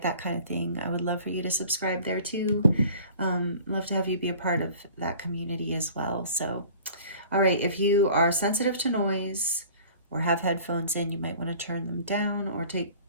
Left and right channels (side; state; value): both; inverted; correlation -0.47